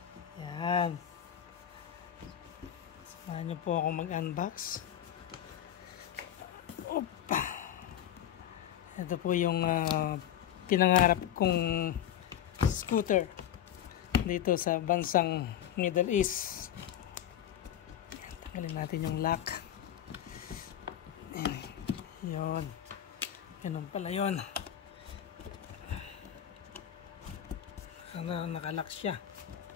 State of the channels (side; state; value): right; quieter; 10.6 dB